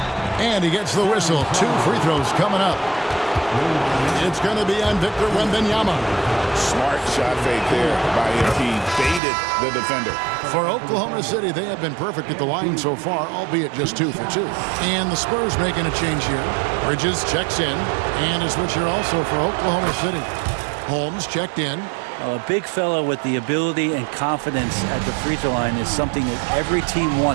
And he gets the whistle. 2 free throws coming up. It's going to be on Victor Wembanyama. Smart shot fake there by MP. Baited the defender. For Oklahoma City, they have been perfect at the line so far, albeit just 2 for 2. And the Spurs making a change here. Bridges checks in. And a switch here also for Oklahoma City. Holmes checked in. A big fella with the ability and confidence at the free throw line is something that every team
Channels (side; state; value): left; drops out; at 9.2 s